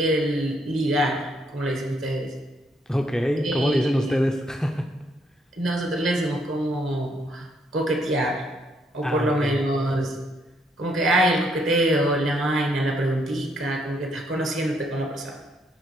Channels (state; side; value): normal; both; correlation 0.72